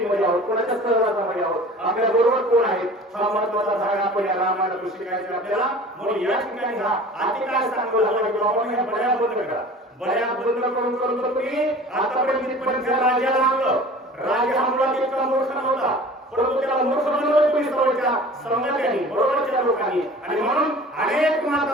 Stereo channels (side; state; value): both; normal; correlation 0.43